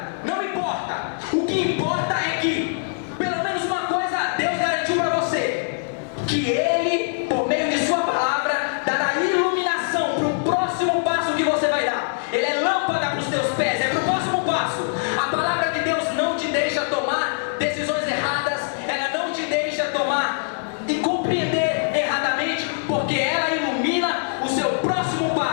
não importa. O que importa é que pelo menos uma coisa Deus garantiu para você: que Ele, por meio de sua palavra, dará iluminação para o próximo passo que você vai dar. Ele é lâmpada para os teus pés, é para o próximo passo. A palavra de Deus não te deixa tomar decisões erradas, ela não te deixa tomar e compreender erradamente, porque ela ilumina o seu próximo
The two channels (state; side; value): silent; right; digital silence